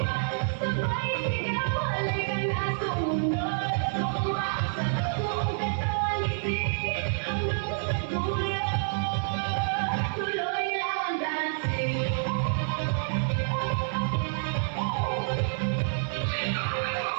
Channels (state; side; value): silent; left; 59 dB below the other